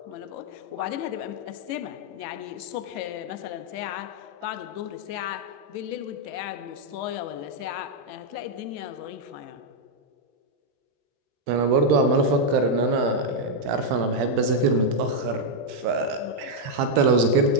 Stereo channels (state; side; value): late; left; 18 ms